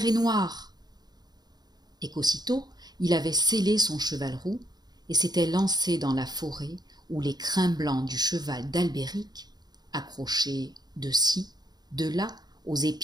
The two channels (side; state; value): left; late; 0.20 ms